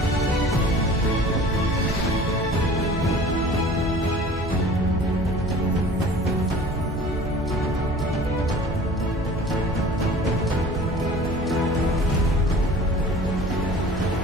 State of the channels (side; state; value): both; normal; correlation 0.44